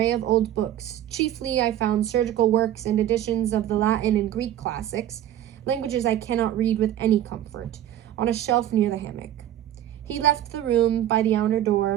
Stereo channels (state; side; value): quieter; left; 12.0 dB